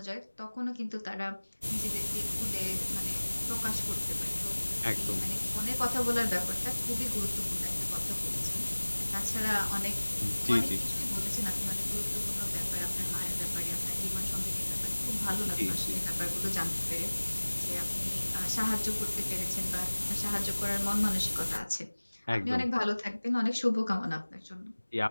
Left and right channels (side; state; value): both; inverted; correlation -1.00